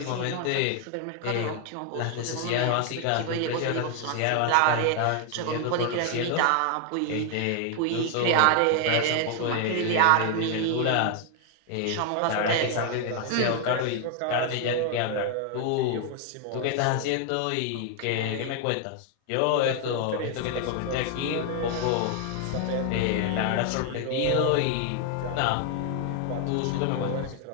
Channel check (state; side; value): different; both; correlation 0.00